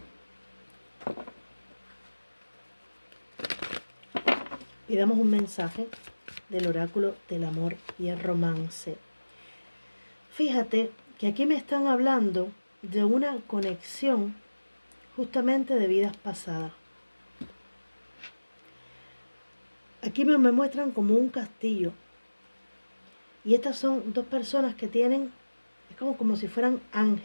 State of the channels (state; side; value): inverted; both; correlation -1.00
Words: Y damos un mensaje del oráculo del amor y el romance. Fíjate que aquí me están hablando de una conexión justamente de vidas pasadas. Aquí me muestran como un castillo. Y estas son dos personas que tienen, es como si fueran